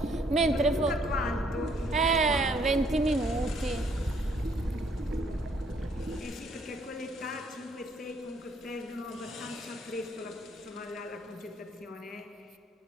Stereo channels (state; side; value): normal; both; correlation 0.66